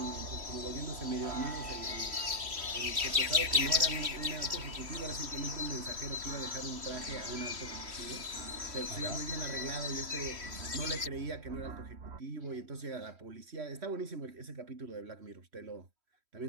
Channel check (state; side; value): late; left; 3.1 ms